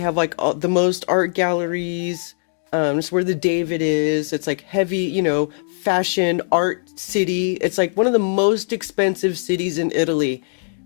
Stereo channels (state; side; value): silent; right; digital silence